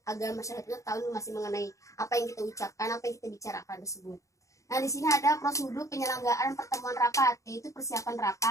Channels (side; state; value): right; late; 0.15 ms